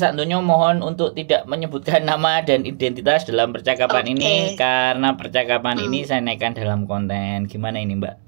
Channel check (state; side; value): silent; left; digital silence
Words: Mohon untuk tidak menyebutkan nama dan identitas dalam percakapan ini Oke. karena percakapan Hmm, ini saya naikkan dalam konten. Gimana ini, Mbak?